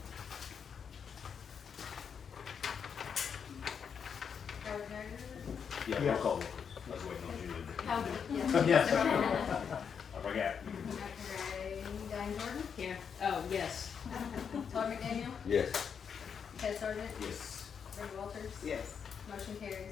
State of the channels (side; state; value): right; quieter; 6.9 dB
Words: Howard Haggard. Yeah, roll Yes. call vote, please. I was waiting on Julie. Howard, yes. Yes. I forgot. Diane Jordan. Here. Oh, yes. Todd McDaniel. Yes. Chad Sargent. Yes. Brenda Walters. Yes. Motion